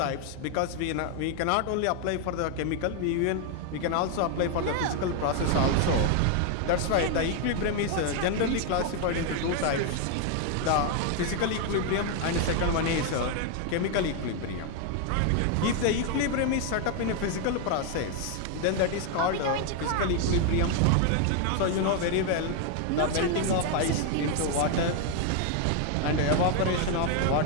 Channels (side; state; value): both; different; correlation 0.01